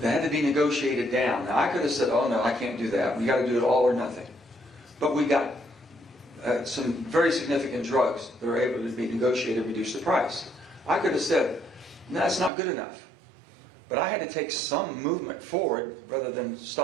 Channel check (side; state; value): left; drops out; at 12.5 s